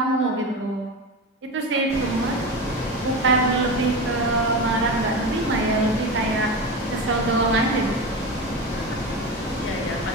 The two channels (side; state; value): both; normal; correlation 0.24